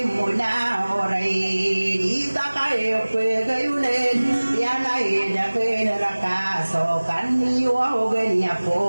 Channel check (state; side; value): inverted; both; correlation -1.00